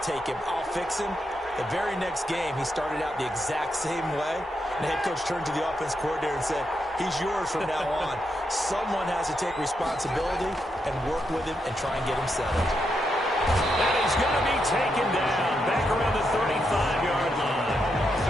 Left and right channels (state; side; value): normal; both; correlation 0.82